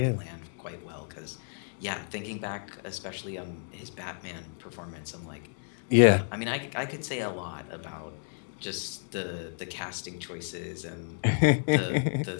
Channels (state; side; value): silent; right; digital silence